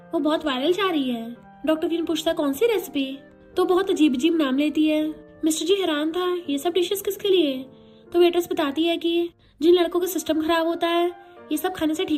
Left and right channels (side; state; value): both; identical; correlation 1.00